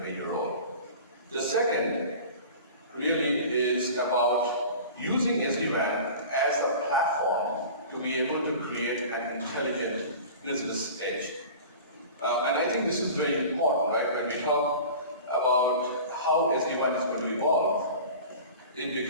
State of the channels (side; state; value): both; inverted; correlation -0.38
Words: role. The second really is about using SD-WAN as a platform to be able to create an intelligent business edge. And I think this is very important, right? When we talk about how SD-WAN is going to evolve, it